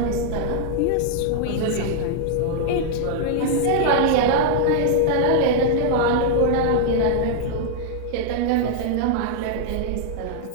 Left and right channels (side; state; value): both; different; correlation -0.01